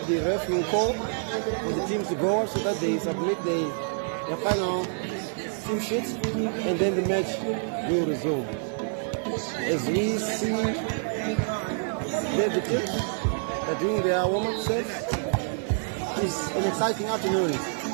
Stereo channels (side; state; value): left; silent; digital silence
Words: the ref will call for the teams to go so that they submit their final team sheets, and then the match will resume. As we see the teams are doing their warm-up serve, it's an exciting afternoon,